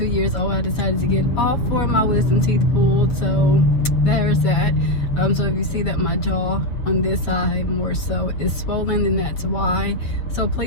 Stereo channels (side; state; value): right; late; 7.2 ms